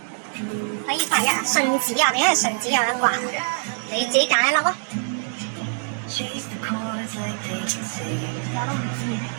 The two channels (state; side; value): silent; left; 63 dB below the other